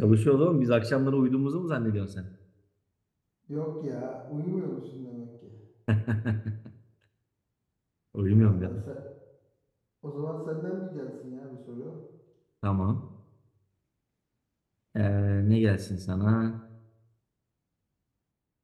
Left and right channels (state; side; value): identical; both; correlation 1.00